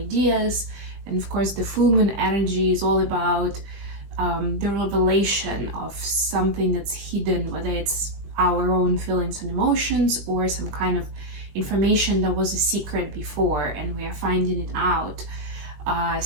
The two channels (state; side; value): late; left; 20 ms